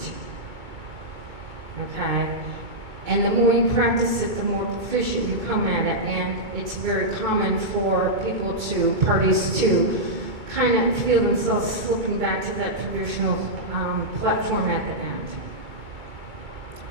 Okay? And the more you practice it, the more proficient you come at it, and it's very common for parties to kind of feel themselves slipping back to that traditional platform at the end.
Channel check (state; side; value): late; left; 2.2 ms